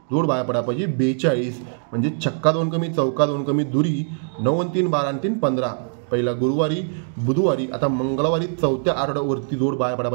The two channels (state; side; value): silent; left; digital silence